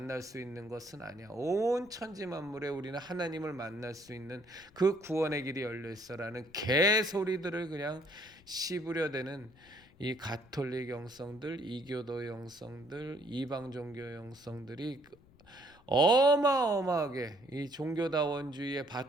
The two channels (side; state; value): left; noise; rumble, 27 dB below the sound